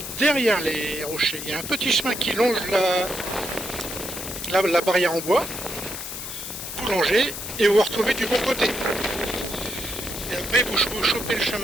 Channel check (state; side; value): noise; left; hiss, 7 dB below the sound